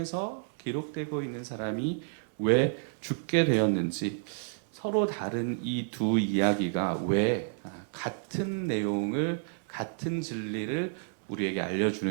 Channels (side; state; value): left; silent; 58 dB below the other